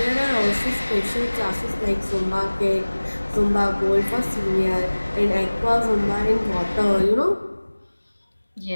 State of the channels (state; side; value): inverted; both; correlation -1.00